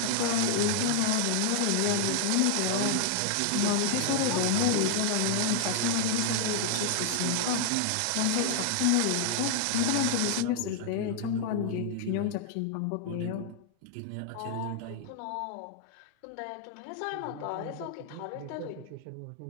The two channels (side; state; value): both; different; correlation 0.00